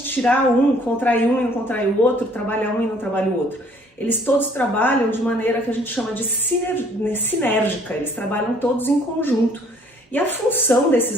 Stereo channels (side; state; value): both; normal; correlation 0.59